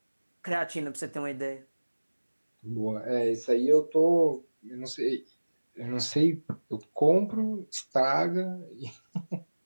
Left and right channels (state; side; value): inverted; both; correlation -1.00